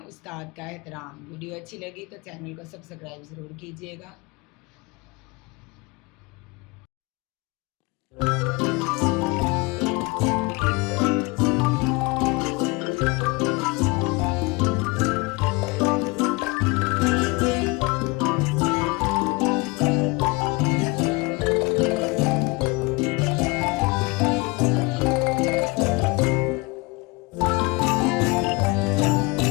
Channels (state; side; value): quieter; right; 26.1 dB